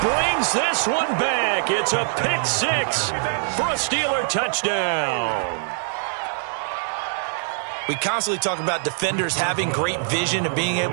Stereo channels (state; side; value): silent; left; digital silence